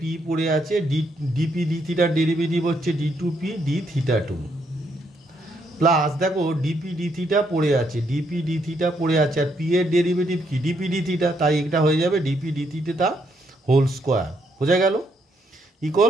পড়ে আছে, ডিপি ডি থিটার ডেরিভেটিভ হচ্ছে D two P D theta two, plus দেখো ডিপি ডি থিটা পড়ে আছে, ডিপি ডি থিটা পড়ে আছে, আর পি এর ডেরিভেটিভ কি ডিপি ডি থিটা, তাই এটা হয়ে যাবে DP D theta whole square. বোঝা গেল?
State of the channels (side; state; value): both; normal; correlation 0.74